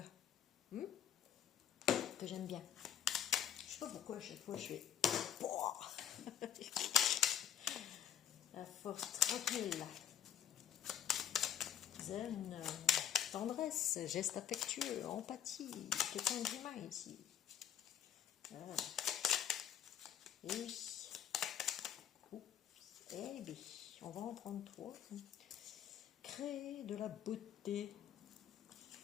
Que j'aime bien. Je sais pas pourquoi à chaque fois je fais... La force tranquille. Zen, tendresse, geste affectueux, empathie, quelqu'un d'humain ici. Voilà. Et oui. Eh bien, on va en prendre 3. Créer de la beauté.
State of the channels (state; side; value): quieter; right; 9.7 dB